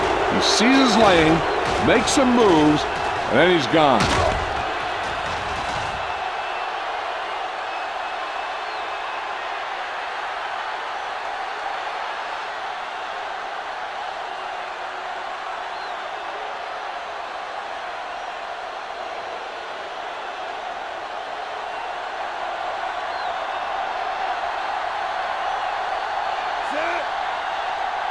He sees his lane, makes some moves, and then he's gone.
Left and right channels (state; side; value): identical; both; correlation 1.00